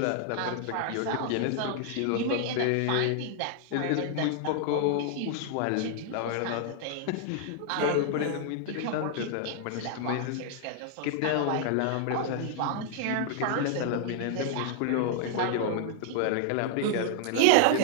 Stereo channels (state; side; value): different; both; correlation -0.01